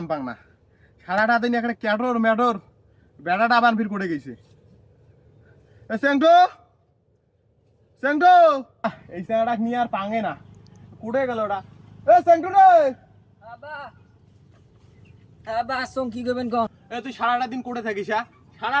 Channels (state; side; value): identical; both; correlation 1.00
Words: পাং না। সারাটা দিন এখানে ক্যাটর ম্যাটর বেড়াটা আবার ফির করে গেছে। এই স্যাংটা নিয়ে আর পাঙে না, কুড়ে গেল ওটা। স্যাংটু রে, কি করবেন কন? তুই সারাটা দিন করে থাকিস?